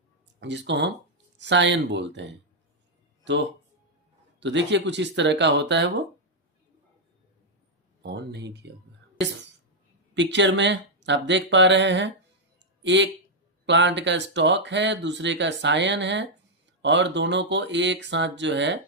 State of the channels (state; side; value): normal; both; correlation -0.03